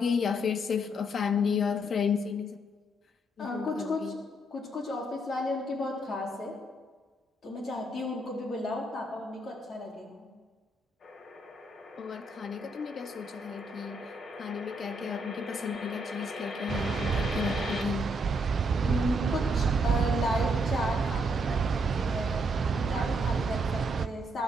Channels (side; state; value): both; normal; correlation 0.74